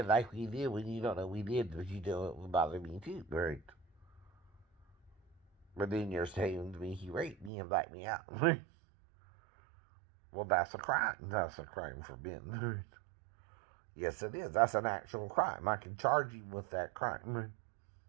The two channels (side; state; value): left; drops out; at 7.5 s